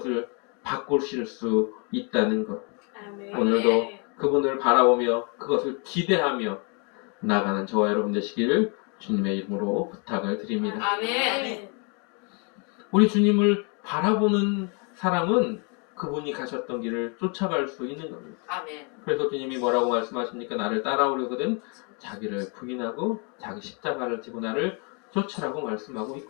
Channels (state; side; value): quieter; right; 35.2 dB